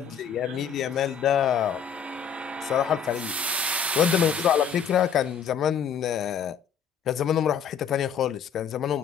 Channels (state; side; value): quieter; right; 7.2 dB